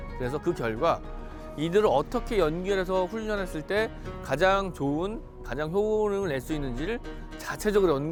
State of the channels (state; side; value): identical; both; correlation 1.00